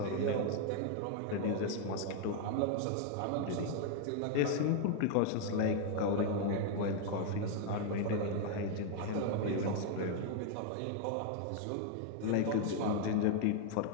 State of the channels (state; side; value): different; both; correlation 0.00